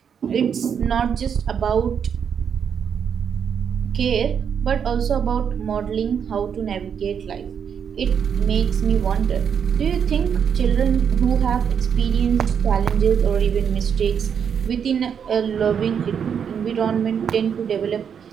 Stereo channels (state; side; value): quieter; left; 7.5 dB